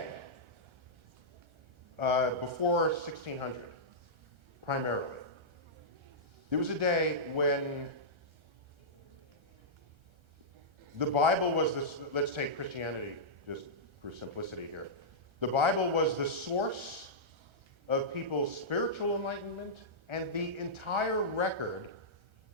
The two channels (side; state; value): left; late; 1.3 ms